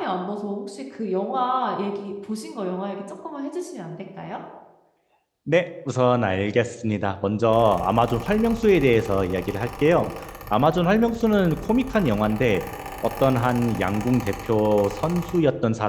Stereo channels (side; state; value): both; identical; correlation 1.00